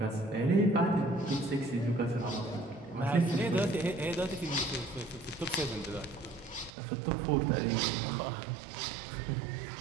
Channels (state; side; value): drops out; left; at 6.7 s